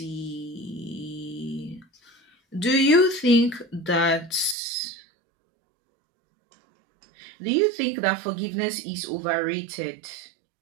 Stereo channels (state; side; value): drops out; left; at 4.5 s